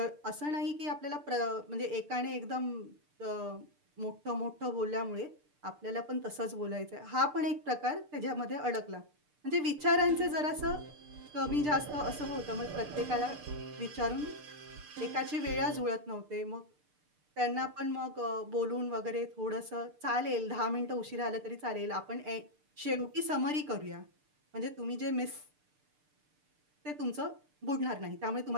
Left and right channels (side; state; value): left; late; 6.7 ms